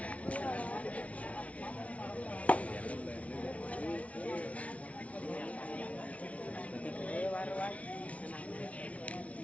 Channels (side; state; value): right; late; 0.065 ms